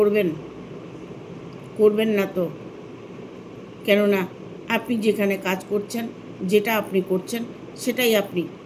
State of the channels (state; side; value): identical; both; correlation 1.00